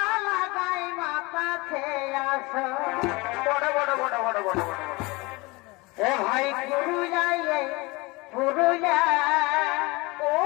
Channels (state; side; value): quieter; right; 24.2 dB